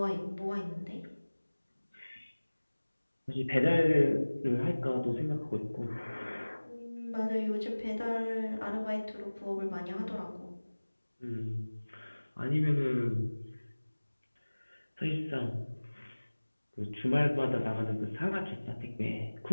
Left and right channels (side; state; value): both; inverted; correlation -1.00